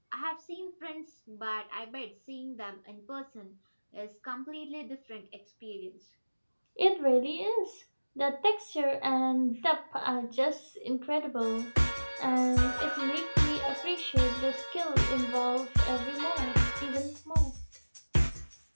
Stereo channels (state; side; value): inverted; both; correlation -1.00